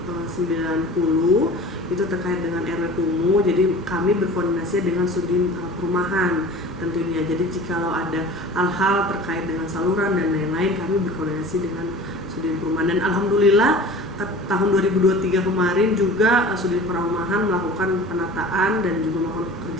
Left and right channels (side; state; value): both; normal; correlation 0.40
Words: 90 itu terkait dengan RW Kumuh, jadi kami berkoordinasi dengan Sudin Perumahan tentunya. Jadi jikalau ada hal-hal terkait dengan saluran dan lain-lain, kami berkoordinasi dengan Sudin Perumahan. Dan alhamdulillah tahun 2023 kemarin juga Sudin Perumahan melakukan penataan dan juga melakukan